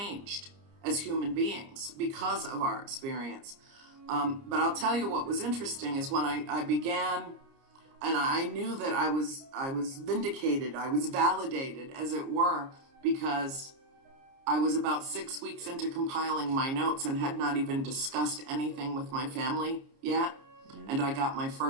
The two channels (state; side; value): late; left; 30 ms